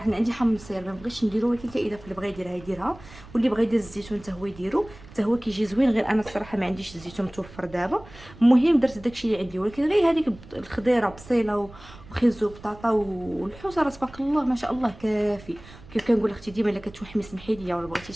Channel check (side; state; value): right; noise; rumble, 20 dB below the sound